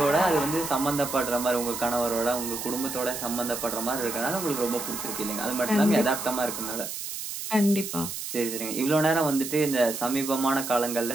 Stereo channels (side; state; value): right; noise; hiss, 6 dB below the sound